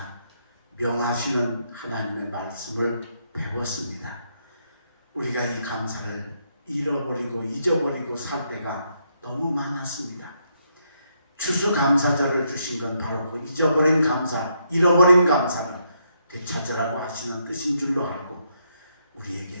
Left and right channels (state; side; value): inverted; both; correlation -0.76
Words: 명하시는 하나님의 말씀을 배웠습니다. 우리가 이 감사를 잃어버리고 잊어버리고 살 때가 너무 많았습니다. 추수감사절을 주신 건 바로 그 잊어버린 감사, 잃어버린 감사를 되찾으라고 하시는 뜻인 줄로 알고